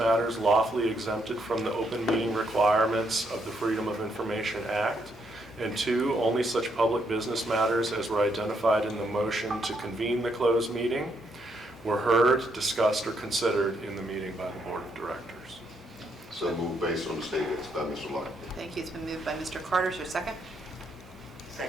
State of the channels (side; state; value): both; normal; correlation 0.75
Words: lawfully exempted from the open meeting requirements of the Freedom of Information Act, and 2, only such public business matters as were identified in the motion to convene the closed meeting were heard, discussed, or considered in the meeting by the Board of Directors. So move based on the statements by Mr. Locke. Thank you. It's been moved by Mr. Carter. Is there a second?